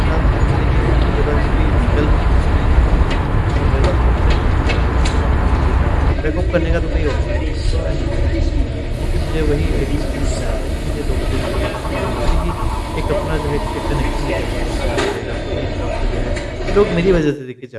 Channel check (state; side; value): identical; both; correlation 1.00